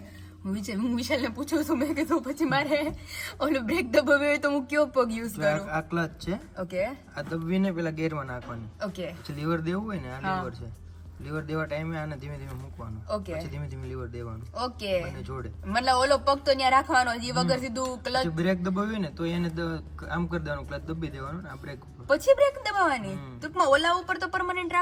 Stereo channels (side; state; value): both; identical; correlation 1.00